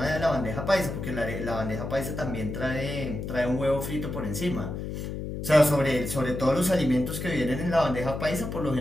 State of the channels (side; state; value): left; noise; hum, 5 dB below the sound